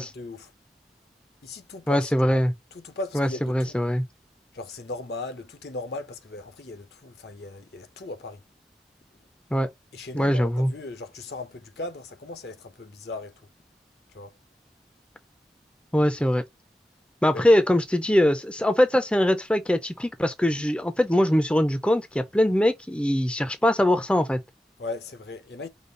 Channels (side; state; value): both; normal; correlation 0.92